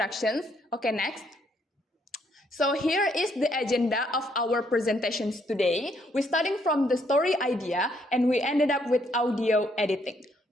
Okay, next. So here is the agenda of our presentations today. We're starting from the story idea and we ended up with audio editing.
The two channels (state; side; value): normal; both; correlation 0.71